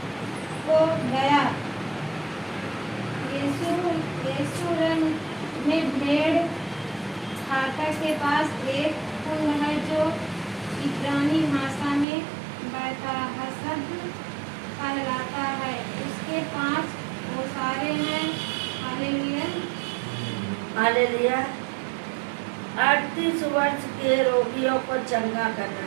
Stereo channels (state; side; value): drops out; left; at 12.1 s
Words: को गया। यरूशलेम में भेड़ फाटक के पास एक कुंड है जो इब्रानी भाषा में बैतहसद कहलाता है। उसके 5 ओसारे हैं। हालेलुया। हालेलुया। 38 वर्ष के रोगियों को चंगा